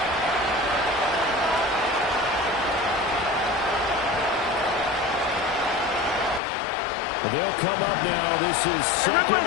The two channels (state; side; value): drops out; right; at 6.4 s